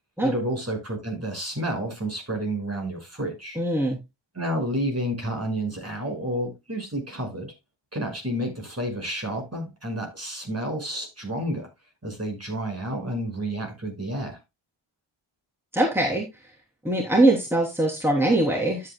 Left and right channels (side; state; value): both; normal; correlation 0.55